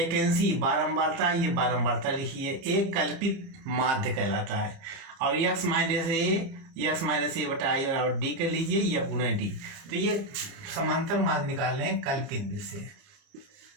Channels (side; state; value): left; late; 30 ms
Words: बारंबारता, ये बारंबारता लिखिए। एक कल्पित माध्य कहलाता है। और यक्स माइनस ए बटा आई बराबर डी कर लीजिए, यफ गुना डी। तो ये समांतर माध्य निकाल रहे हैं कल्पित विधि से।